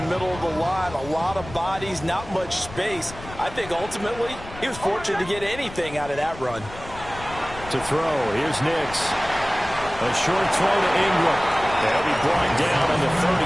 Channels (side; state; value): left; noise; rumble, 15 dB below the sound